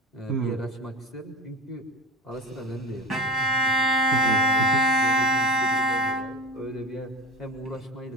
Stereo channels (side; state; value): both; normal; correlation 0.31